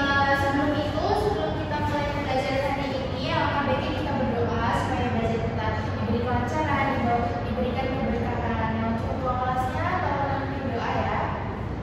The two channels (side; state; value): both; identical; correlation 1.00